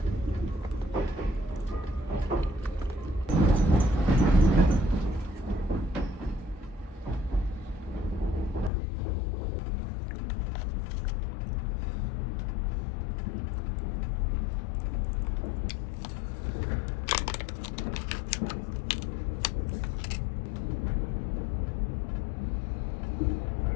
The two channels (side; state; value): right; drops out; at 8.7 s